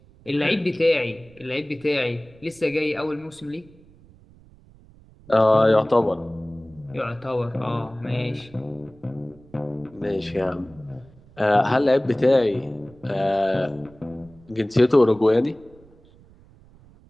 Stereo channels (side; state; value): right; noise; rumble, 26 dB below the sound